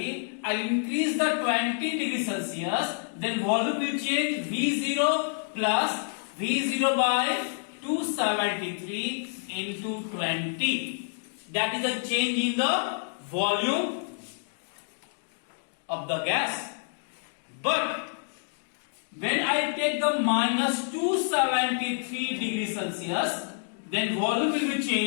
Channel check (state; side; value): silent; right; digital silence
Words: I will increase the 20 degrees Celsius, then volume will change V0 plus V0 by 273 into 20. That is a change in the volume of the gas. But when I take the minus 273 degrees Celsius, then volume will be